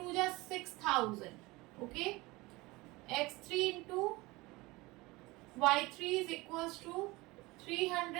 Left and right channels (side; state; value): left; quieter; 22.0 dB